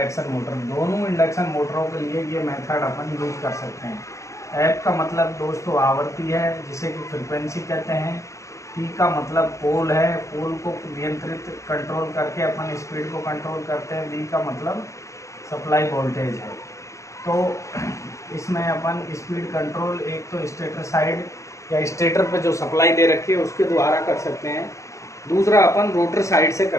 मोटर। दोनों इंडक्शन मोटरों के लिए ये मेथड अपन यूज कर सकते हैं। एफ का मतलब दोस्तों आवर्ती है जिसे कि फ्रिक्वेंसी कहते हैं। पी का मतलब पोल है, पोल को नियंत्रित कंट्रोल करके अपन स्पीड को कंट्रोल करते हैं। वी का मतलब सप्लाई वोल्टेज है। तो इसमें अपन स्पीड कंट्रोल एक तो स्टेटर साइड या स्टेटर पे जो सप्लाई दे रखी है उसके द्वारा कर सकते हैं, दूसरा अपन रोटर साइड से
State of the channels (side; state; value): right; late; 0.15 ms